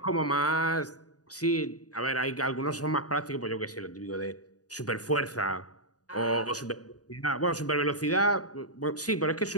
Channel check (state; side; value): late; right; 0.68 ms